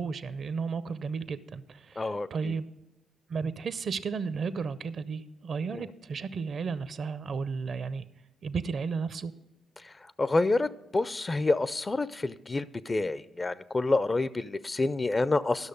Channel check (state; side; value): normal; both; correlation 0.90